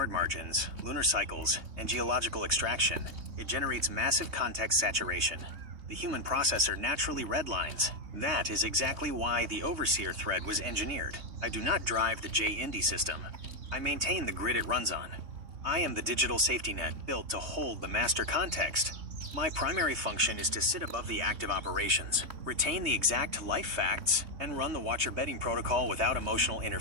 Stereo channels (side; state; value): left; late; 3.2 ms